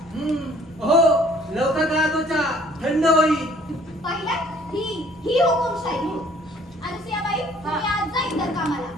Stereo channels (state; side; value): normal; both; correlation 0.57